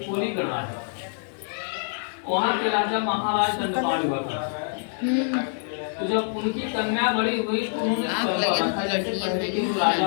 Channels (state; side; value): silent; right; digital silence